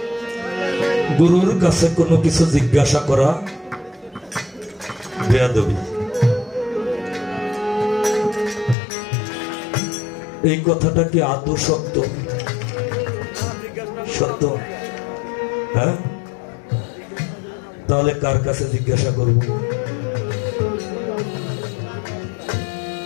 গুরুর কাছে কোনো কিছু জিজ্ঞাসা করা বেয়াদবি। এই কথাটা কি আদৌ সত্য? সত্য? হ্যাঁ, তাহলে কার কাছে জিজ্ঞাসা করব?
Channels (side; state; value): right; drops out; at 8.8 s